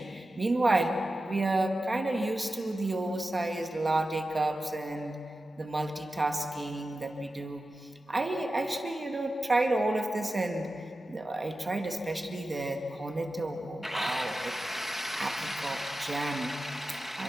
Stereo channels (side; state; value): both; normal; correlation 0.93